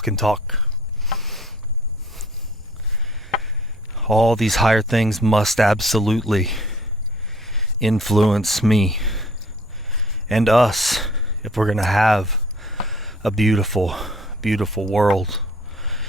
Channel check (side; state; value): both; normal; correlation 0.54